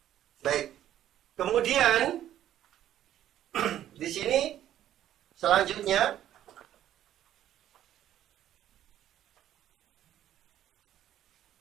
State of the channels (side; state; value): left; quieter; 11.8 dB